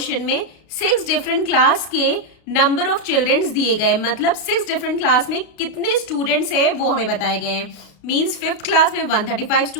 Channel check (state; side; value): late; right; 33 ms